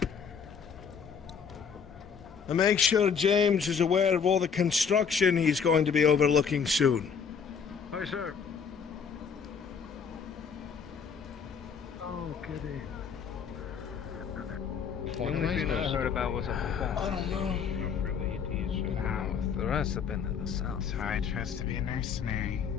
And make sure James is aware of all the construction he's going to be overlooking soon. Aye, sir. Oh, goody. The only thing I heard about was a I don't know. The rest have been to the south. So I trust to be a mercenary.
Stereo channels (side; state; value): right; quieter; 6.5 dB